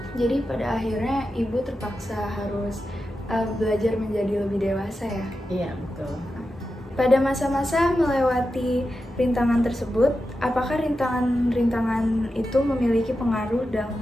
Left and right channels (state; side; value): normal; both; correlation 0.90